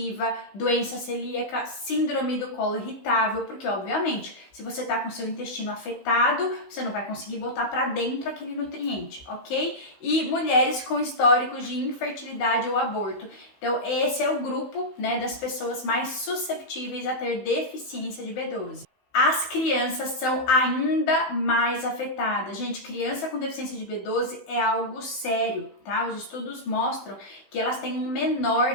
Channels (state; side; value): late; right; 16 ms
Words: doença celíaca, síndrome do colo irritável, porque obviamente, se você tá com seu intestino afetado, você não vai conseguir botar para dentro aquele nutriente, ok? E mulheres com históricos de infertilidade ou aborto. Então, esse é o grupo, né, das pessoas mais susceptíveis a ter deficiência de B12. As crianças são ainda mais afetadas. Gente, criança com deficiência de B12 é algo sério, tá? Os estudos mostram que elas têm um menor